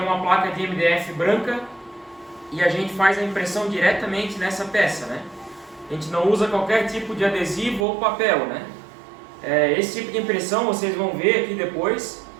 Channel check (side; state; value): left; drops out; at 7.9 s